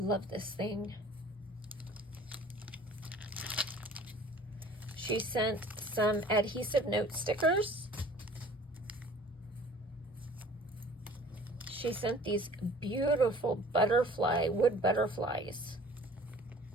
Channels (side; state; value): both; normal; correlation 0.49